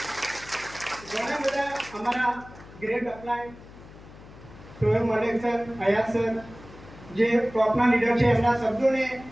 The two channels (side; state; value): left; noise; hum, 19 dB below the sound